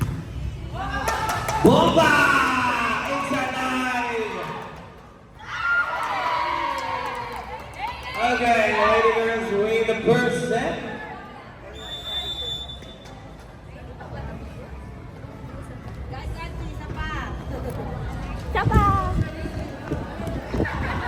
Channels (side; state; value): both; identical; correlation 1.00